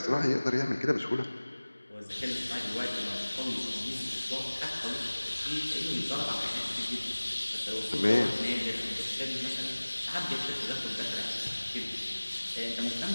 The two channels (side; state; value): both; inverted; correlation -1.00